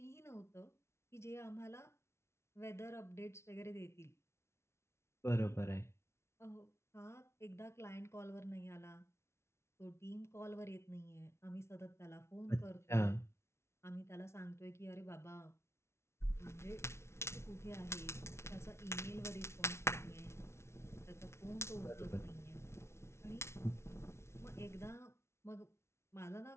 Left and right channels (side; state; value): right; late; 0.13 ms